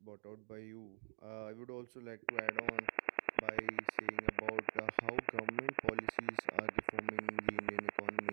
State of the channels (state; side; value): silent; left; digital silence